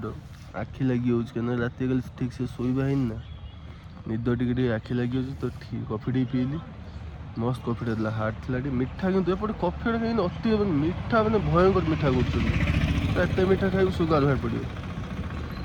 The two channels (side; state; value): both; identical; correlation 1.00